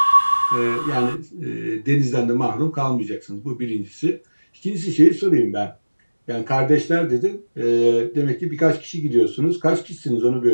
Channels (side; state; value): both; inverted; correlation -1.00